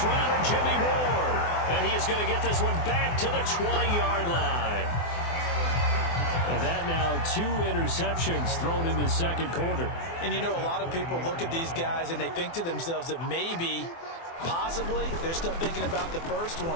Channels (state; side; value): late; right; 24 ms